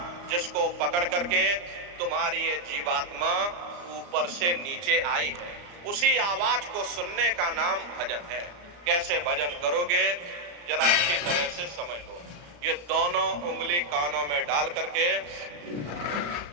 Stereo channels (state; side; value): late; left; 34 ms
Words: जिसको पकड़ करके तुम्हारी ये जीवात्मा ऊपर से नीचे आई है। उसी आवाज को सुनने का नाम भजन है। कैसे भजन करोगे, जरा अच्छी तरह से समझ लो। ये दोनों उंगली कानों में डाल करके